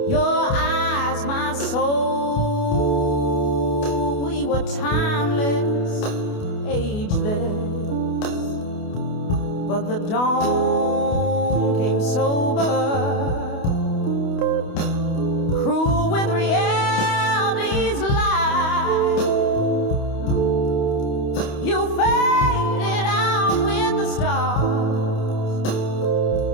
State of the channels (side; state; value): right; late; 28 ms